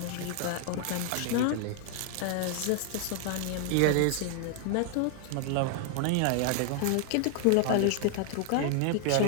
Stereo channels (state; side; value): different; both; correlation 0.00